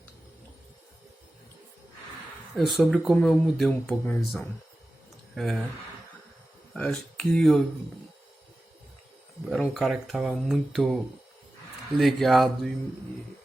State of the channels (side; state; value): both; normal; correlation 0.94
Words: Sobre como eu mudei um pouco a minha visão. Acho que eu era um cara que estava muito ligado